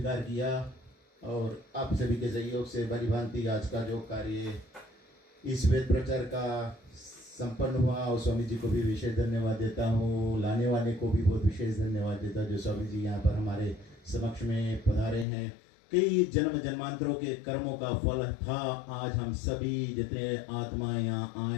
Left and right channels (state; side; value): drops out; right; at 15.2 s